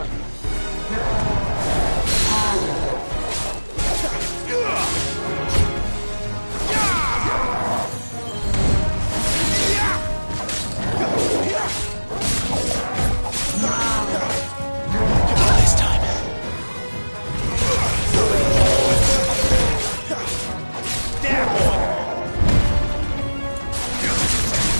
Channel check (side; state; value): both; inverted; correlation -1.00